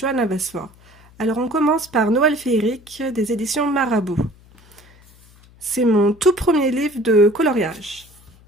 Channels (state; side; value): noise; left; hum, 26 dB below the sound